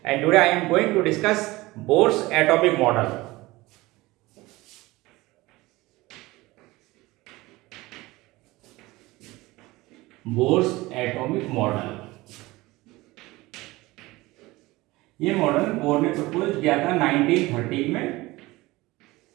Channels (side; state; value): left; quieter; 20.3 dB